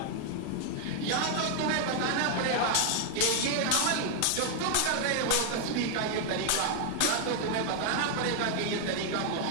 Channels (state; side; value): different; both; correlation 0.00